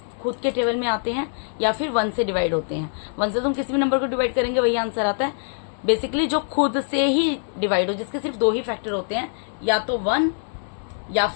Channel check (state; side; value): silent; right; 59 dB below the other